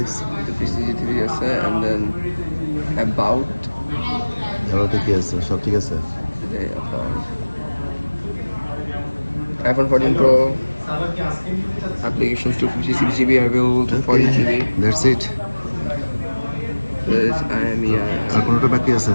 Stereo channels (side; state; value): both; inverted; correlation -1.00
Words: 256 GB আছে and then about এবার কি আছে, সব ঠিক আছে? iPhone 14 Pro applications 256 GB available to 40 GB that's it. this আর কোনোটা বাকি আছে?